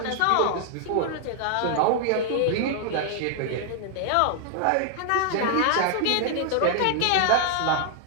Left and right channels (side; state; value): both; different; correlation 0.00